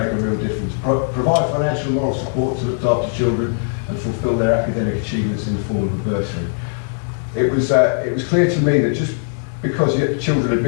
a real difference. Provide financial and moral support to look after children and fulfil their academic achievements in the form of a bursary. It was clear to me that just because children had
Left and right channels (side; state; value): right; silent; 66 dB below the other